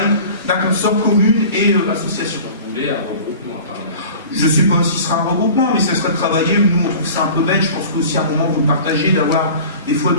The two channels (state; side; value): inverted; both; correlation -0.41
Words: d'un consort commune et association. Vous voulez un regroupement apparemment? Je ne sais pas si ce sera un regroupement, mais ce serait de travailler. Nous, on trouve ça un peu bête. Je pense qu'aussi à un moment, vous le partagez, d'avoir des fois